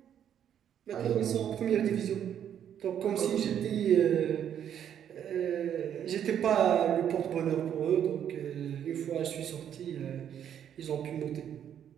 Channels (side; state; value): left; quieter; 9.4 dB